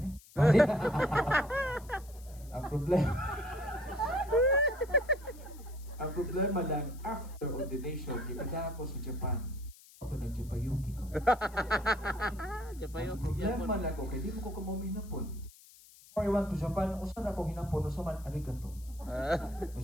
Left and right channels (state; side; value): noise; left; hiss, 23 dB below the sound